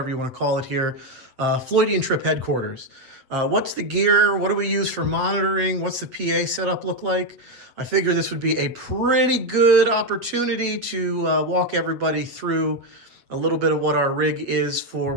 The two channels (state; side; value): late; left; 8.1 ms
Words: you want to call it here, Floydian Trip headquarters. What's the gear? What do we use for monitoring? What's the PA setup look like? I figure this would be a pretty good opportunity to walk everybody through a little bit of what our rig is for